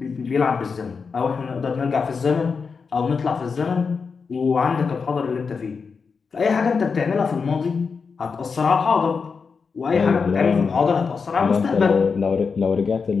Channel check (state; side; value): quieter; right; 5.3 dB